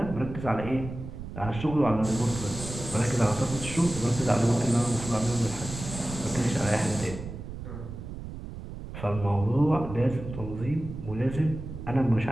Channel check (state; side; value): noise; right; rumble, 10 dB below the sound